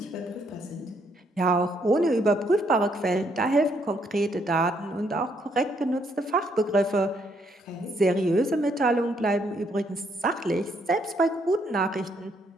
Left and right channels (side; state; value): both; normal; correlation 0.72